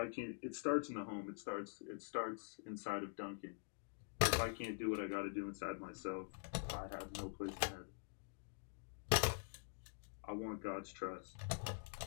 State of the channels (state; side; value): silent; right; digital silence